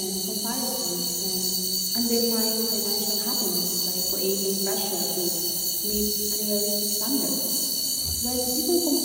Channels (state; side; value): identical; both; correlation 1.00